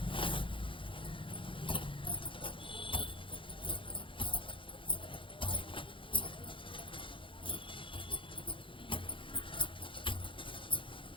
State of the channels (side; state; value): right; late; 0.25 ms